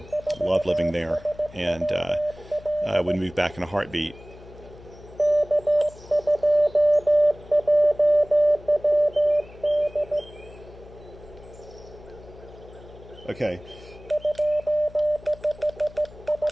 Loved living there, and I would move back in a heartbeat. Okay.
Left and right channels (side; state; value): left; noise; hum, 20 dB below the sound